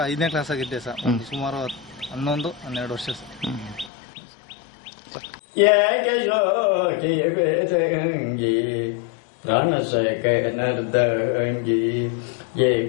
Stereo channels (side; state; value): right; drops out; at 3.9 s